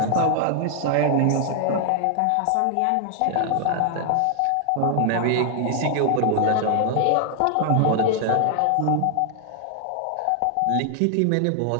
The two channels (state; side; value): different; both; correlation 0.00